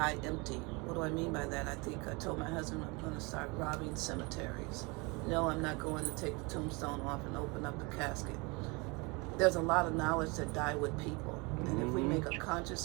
empty. What do I mean by that? I think I told my husband I'm going to start robbing cemeteries. No, I'm not going to take the tombstone off and open up the casket. There's a lot of knowledge that die with people. And if we make a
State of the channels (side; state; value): left; quieter; 27.8 dB